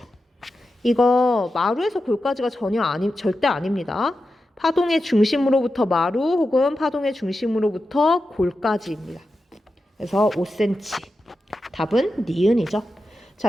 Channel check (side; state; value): both; normal; correlation 0.90